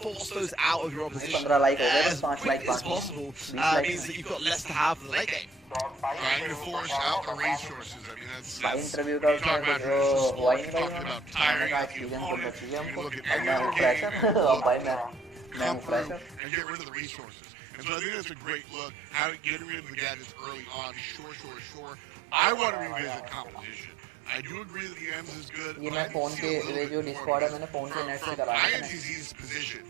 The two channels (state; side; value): drops out; left; at 16.4 s